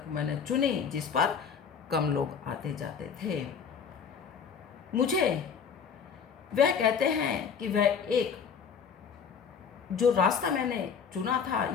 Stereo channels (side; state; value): right; quieter; 6.7 dB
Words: मैंने चुनी जिस पर कम लोग आते जाते थे। मुझे वह कहते हैं कि वह एक जो रास्ता मैंने चुना था